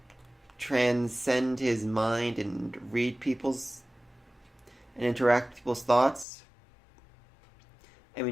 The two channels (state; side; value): drops out; right; at 6.2 s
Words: transcend his mind and read and interact with people's thoughts. I